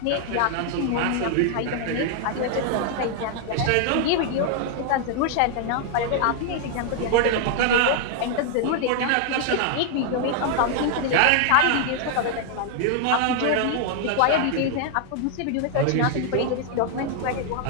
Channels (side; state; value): both; different; correlation 0.00